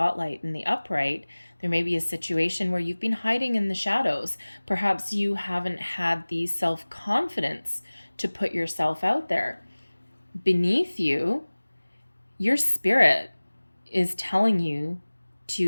in the upright, there may be a situation where you've been hiding in the shadows. Perhaps you haven't had the self-confidence to put yourself out there. Beneath you, your spirit is telling you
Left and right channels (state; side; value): inverted; both; correlation -1.00